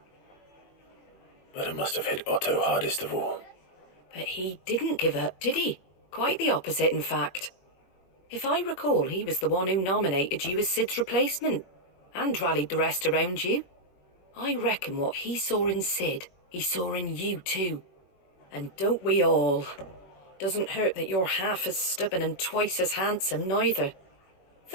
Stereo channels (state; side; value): late; right; 21 ms